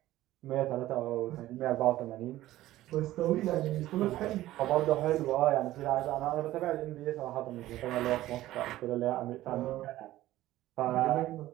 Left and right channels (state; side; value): quieter; left; 15.3 dB